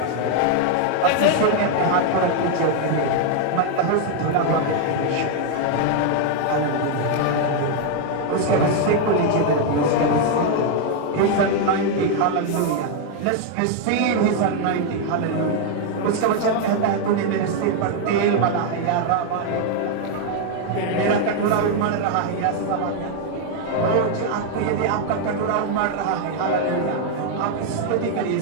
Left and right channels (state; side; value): different; both; correlation 0.00